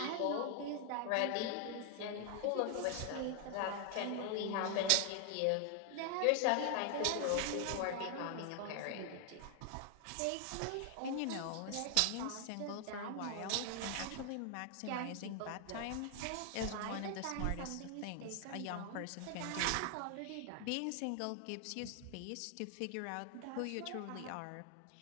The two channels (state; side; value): different; both; correlation 0.00